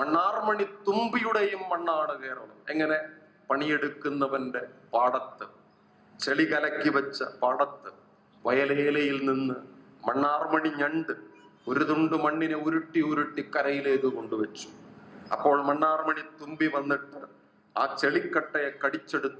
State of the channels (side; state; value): both; identical; correlation 1.00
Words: തുമ്പിയുടെയും മണ്ണാണ് കേരളം. എങ്ങനെ? പണിയെടുക്കുന്നവന്റെ പാടത്ത്, ചെളി കലക്കി വെച്ച പാടത്ത് വയലേലയിൽ നിന്ന് മണ്ണാർമണി ഞണ്ട് ഒരു തുണ്ട് മണ്ണിനെ ഉരുട്ടി ഉരുട്ടി കരയിലേക്ക് കൊണ്ടുവച്ചു. അപ്പോൾ മണ്ണാർമണി തുമ്പി വന്നിട്ട് ആ ചെളിക്കട്ടയെ